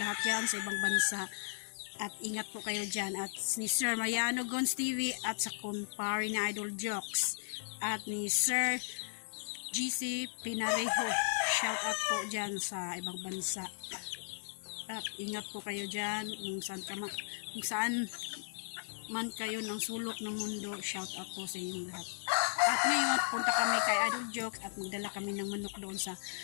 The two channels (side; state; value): right; silent; 54 dB below the other